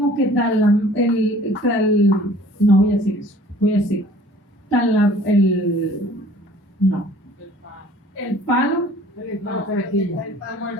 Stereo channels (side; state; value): both; normal; correlation 0.51